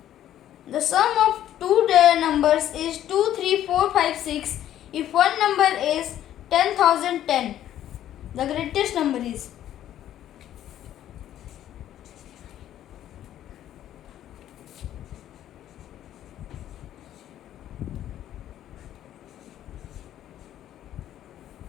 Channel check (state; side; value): quieter; right; 11.8 dB